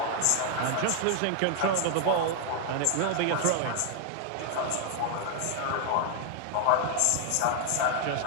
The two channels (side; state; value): both; different; correlation 0.00